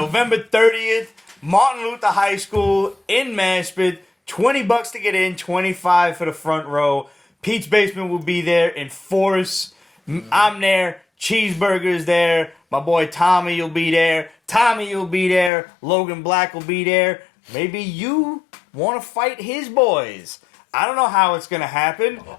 30th, Martin Luther High School in Maspeth? $20 to get in, $25 for the front row. Pete's Basement will be there in force. I'm there. Cheeseburger's there. My boy Tommy will be there. Tommy will be there. Logan Black will be there. Maybe you want to fight his boys. I don't know how it's going to happen.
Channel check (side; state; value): right; drops out; at 15.5 s